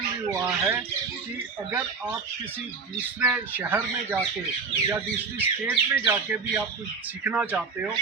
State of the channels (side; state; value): left; quieter; 4.9 dB